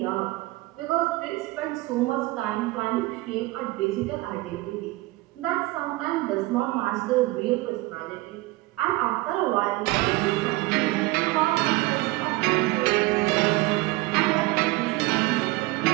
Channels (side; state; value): left; quieter; 20.5 dB